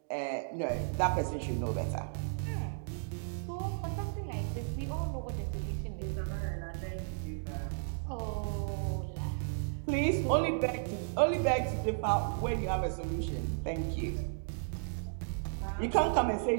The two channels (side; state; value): left; silent; digital silence